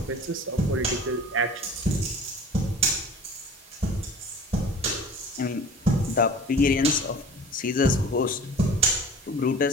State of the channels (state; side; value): normal; both; correlation 0.42